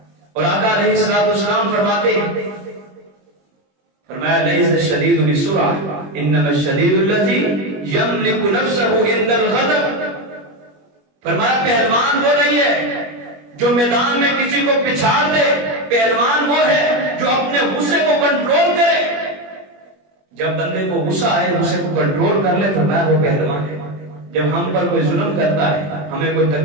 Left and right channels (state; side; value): late; left; 21 ms